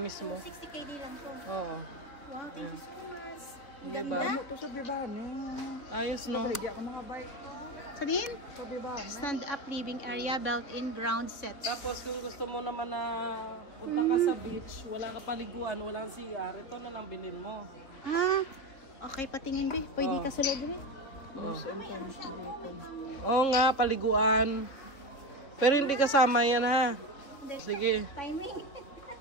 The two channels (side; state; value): right; late; 3.6 ms